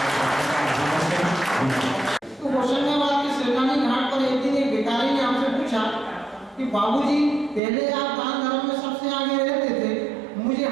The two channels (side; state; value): left; drops out; at 7.6 s